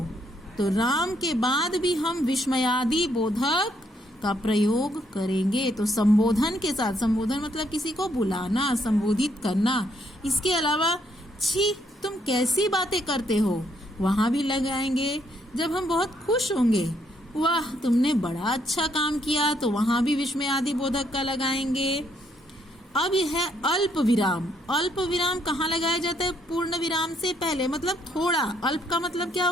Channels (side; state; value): both; normal; correlation 0.72